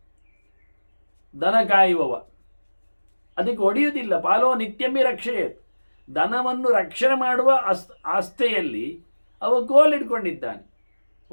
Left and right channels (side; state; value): both; inverted; correlation -1.00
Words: ದನ ಕಾಯುವವ, ಅದಕ್ಕೆ ಹೊಡೆಯುವುದಿಲ್ಲ. ಪಾಲೋ ನಿತ್ಯಮಿ ರಕ್ಷೆಯೇ. ದನವನ್ನು ರಕ್ಷಣೆ ಮಾಡುವ ಆಸ್ಥೆಯಲ್ಲಿ ಅವ ಕೋಲಿಡ್ಕೊಂಡಿದ್ದಾನೆ,